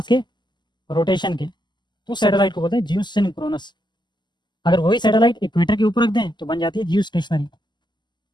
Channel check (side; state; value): right; late; 0.21 ms